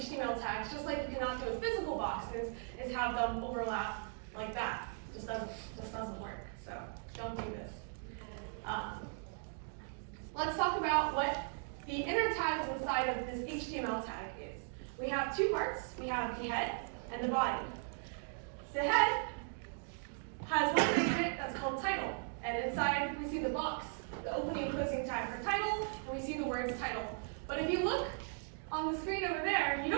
tags, just like you cannot do with physical boxes, is have them overlap like that. Just doesn't work. So don't do this. Let's talk about what the inner tags inside of this HTML tag is. We have two parts. We have the head and the body. The head has one thing in it that's called title. And inside we see the box, the opening and closing tag for title, and we see the words title. But if you look on the screen over there, you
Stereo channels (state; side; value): silent; left; 52 dB below the other